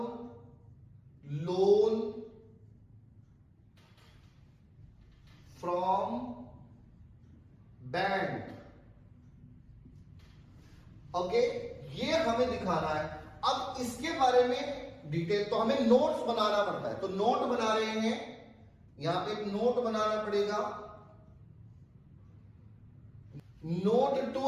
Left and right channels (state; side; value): identical; both; correlation 1.00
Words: loan from bank. Okay, ये हमें दिखाना है। अब इसके बारे में डिटेल, तो हमें नोट्स बनाना पड़ता है। तो नोट बना रहे हैं, यहां पे एक नोट बनाना पड़ेगा, नोट टू